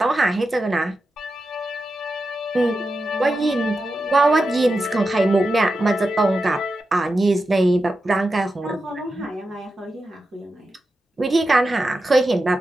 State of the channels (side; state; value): both; normal; correlation 0.90